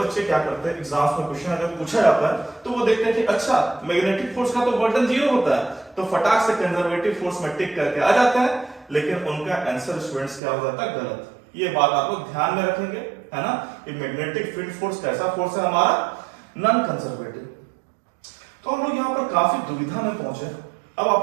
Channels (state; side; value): drops out; left; at 10.4 s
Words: क्या करते हैं, एग्जाम्स में क्वेश्चन अगर पूछा जाता है तो वो देखते हैं कि अच्छा मैग्नेटिक फोर्स का तो वर्डन जीरो होता है, तो फटाक से कंजर्वेटिव फोर्स में टिक करके आ जाता है, लेकिन उनका आंसर स्टूडेंट्स क्या हो जाता है, गलत। ये बात आप लोग ध्यान में रखेंगे, है ना। कि मैग्नेटिक फील्ड फोर्स कैसा फोर्स है हमारा, नॉन कंजर्वेटिव। तो हम लोग यहाँ पर काफी दुविधा में पहुंचे। अब